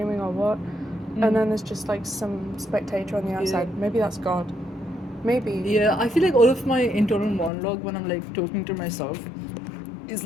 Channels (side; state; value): right; drops out; at 7.5 s